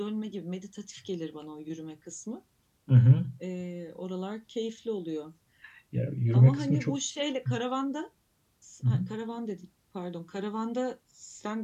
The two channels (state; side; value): identical; both; correlation 1.00